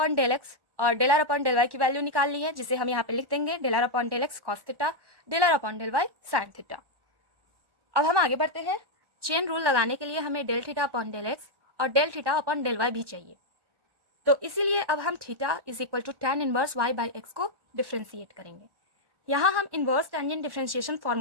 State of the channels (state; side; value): late; left; 1.1 ms